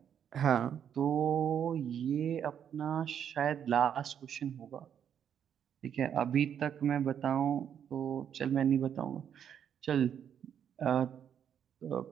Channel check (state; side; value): quieter; left; 8.7 dB